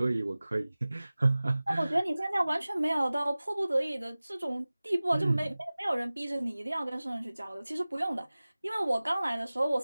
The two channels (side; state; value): both; inverted; correlation -0.98